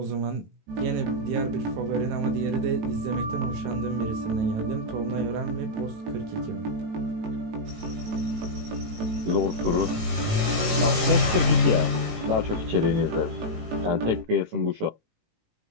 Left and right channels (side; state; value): left; late; 18 ms